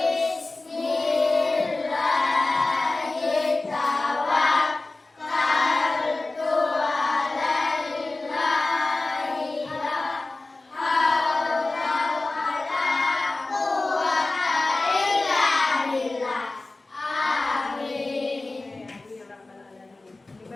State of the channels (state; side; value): quieter; right; 3.2 dB